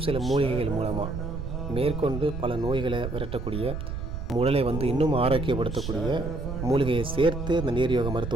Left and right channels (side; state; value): right; noise; rumble, 5 dB below the sound